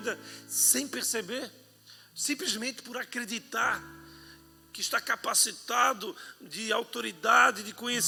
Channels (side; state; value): both; identical; correlation 1.00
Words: sem perceber, simplesmente por acreditar que está capacitado de autoridade, de